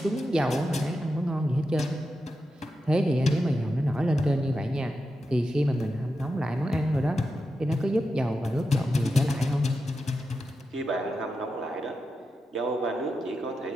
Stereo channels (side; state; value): both; normal; correlation 0.89